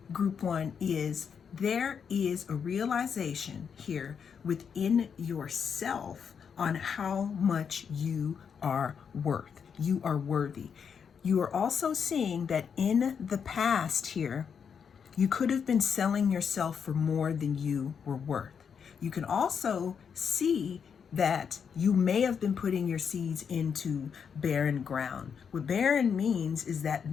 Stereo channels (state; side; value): quieter; right; 6.9 dB